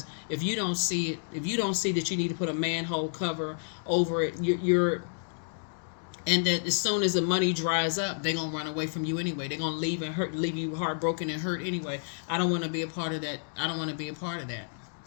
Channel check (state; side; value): silent; right; digital silence